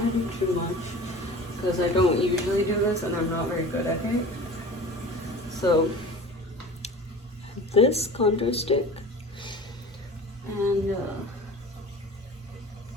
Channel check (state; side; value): normal; both; correlation 0.39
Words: to do too much because I don't usually do this and I'm not very good at it. So this contour stick, and